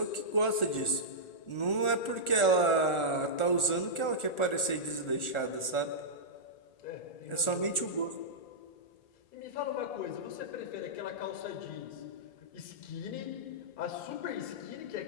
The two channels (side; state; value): right; late; 1.4 ms